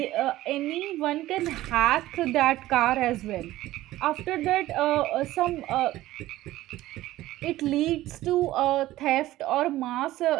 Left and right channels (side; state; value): left; quieter; 15.8 dB